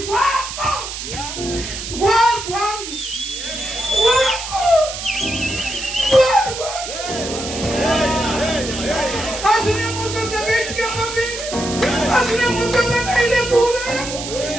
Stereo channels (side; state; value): right; noise; hiss, 8 dB below the sound